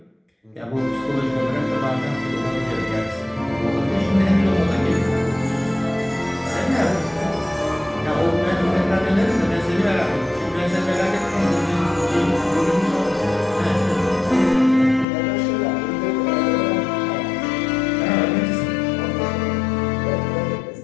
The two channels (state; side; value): drops out; right; at 15.1 s